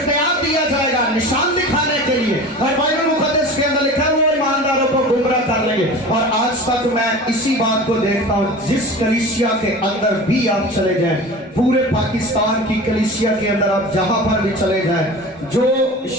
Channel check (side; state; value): both; normal; correlation 0.35